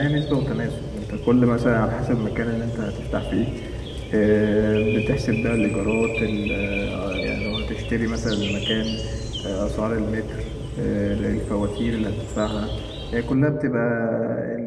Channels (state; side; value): identical; both; correlation 1.00